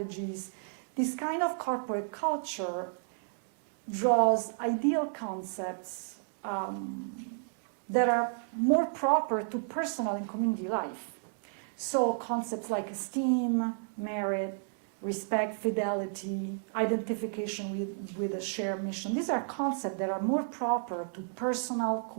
this kind of corporate culture draws ideal concepts that are more proper to personal and community life. So concepts like esteem, merit, respect, fidelity, identification with a shared mission, these are concepts that are more proper to personal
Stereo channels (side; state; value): left; silent; digital silence